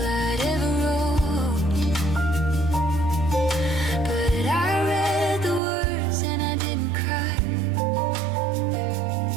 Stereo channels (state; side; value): drops out; left; at 5.6 s